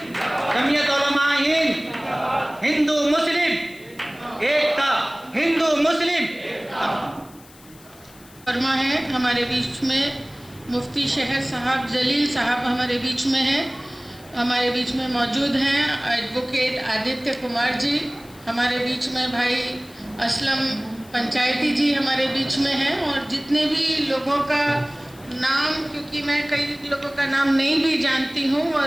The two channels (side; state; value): left; noise; hiss, 24 dB below the sound